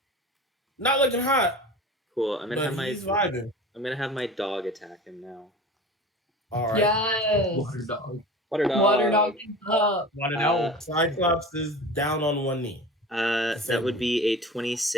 Not looking hot, Cool. I'm gonna but he's vibing. have my dog attack him now. All right. Yes. Water dog. Water dog. Water dog is up. Want to know? Cyclops is down on one knee. That would be a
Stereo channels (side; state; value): both; normal; correlation 0.36